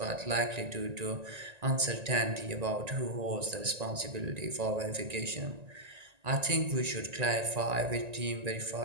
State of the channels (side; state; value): left; late; 1.9 ms